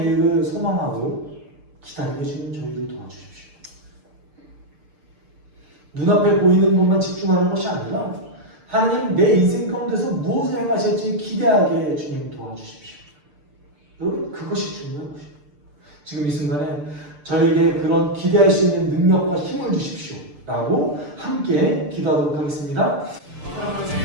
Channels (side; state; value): left; late; 6.8 ms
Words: 소망하고 기다리게 해주는 저희를 도와주십시오. 눈앞에 보이는 것만 집중하는 것이 아니라 하나님 내 인생 가운데서 무엇을 행하실지 기대하게 주님 도와주십시오. 여러분 그것이 중요한 것이에요. 지금 이 순간에 저에게 그런 기대할 수 있는 능력과 힘을 주십시오 라고 함께 기도하도록 하겠습니다.